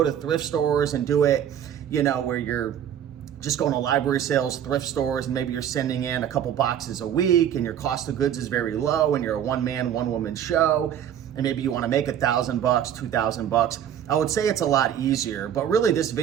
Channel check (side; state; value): left; quieter; 9.7 dB